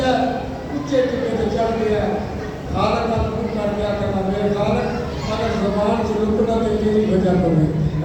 اچھے ٹکے سے چڑھ گیا ہے. خالق کا حکم کر دیا کرنا میرے خالق اگر زبان سے لکنا تو میری وجہ کرے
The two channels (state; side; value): identical; both; correlation 1.00